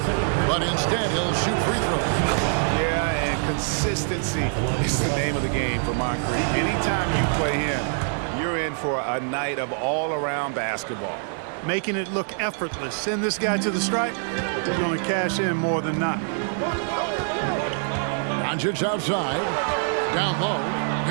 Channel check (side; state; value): left; silent; 60 dB below the other